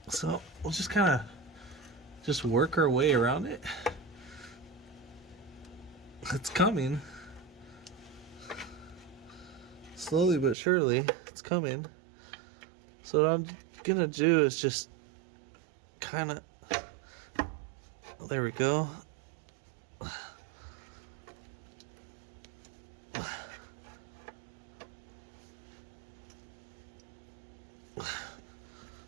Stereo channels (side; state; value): left; drops out; at 10.6 s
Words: So we'll just kind of just work our way around it. It's coming. Slowly but surely, it's coming. So what I'm gonna do is just kind of, there we go.